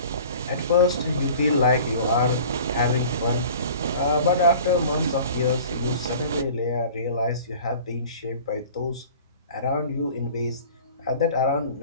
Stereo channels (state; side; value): inverted; both; correlation -0.44